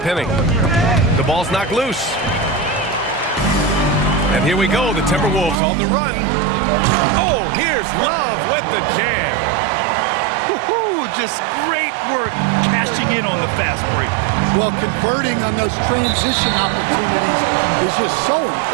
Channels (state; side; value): drops out; left; at 5.6 s